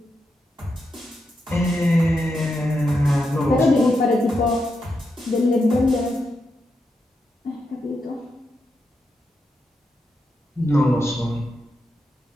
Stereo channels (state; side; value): normal; both; correlation 0.85